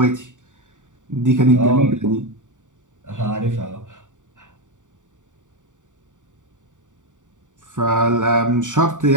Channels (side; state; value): left; late; 0.86 ms